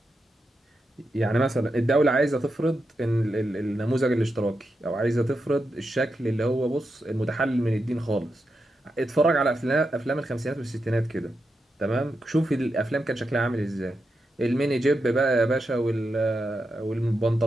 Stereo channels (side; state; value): both; normal; correlation 0.87